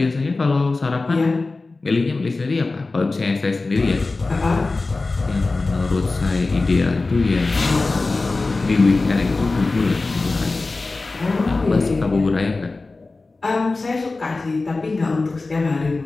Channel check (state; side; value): quieter; right; 3.5 dB